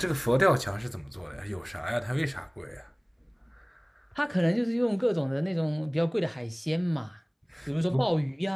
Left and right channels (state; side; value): identical; both; correlation 1.00